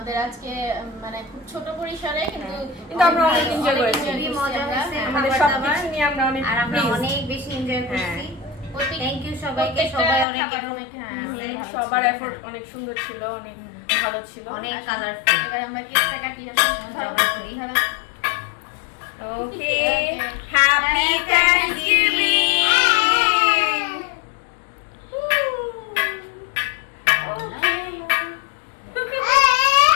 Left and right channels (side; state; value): right; drops out; at 10.2 s